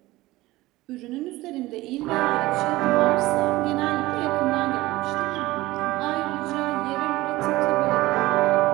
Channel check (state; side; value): quieter; left; 18.6 dB